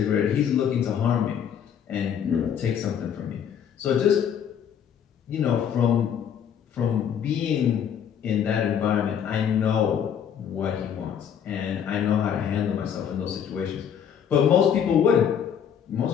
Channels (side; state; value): right; quieter; 8.4 dB